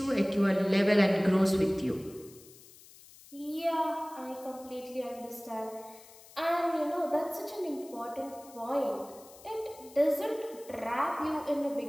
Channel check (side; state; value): left; noise; hiss, 22 dB below the sound